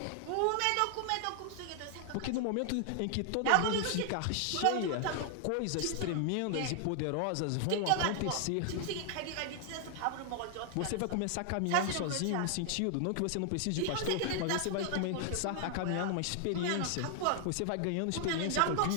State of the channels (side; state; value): both; different; correlation 0.00